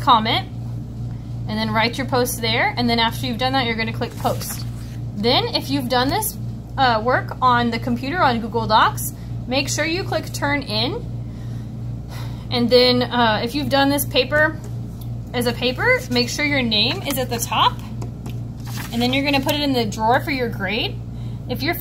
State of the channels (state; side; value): identical; both; correlation 1.00